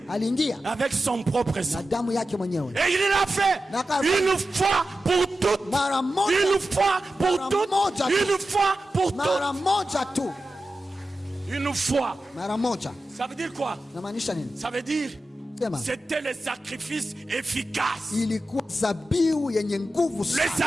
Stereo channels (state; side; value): normal; both; correlation 0.92